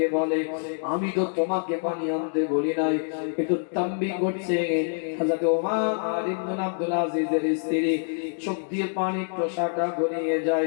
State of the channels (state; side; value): silent; right; digital silence